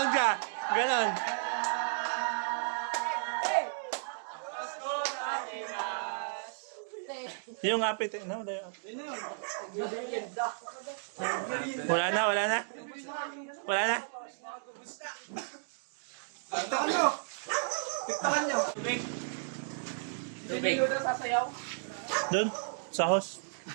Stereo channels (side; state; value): left; silent; digital silence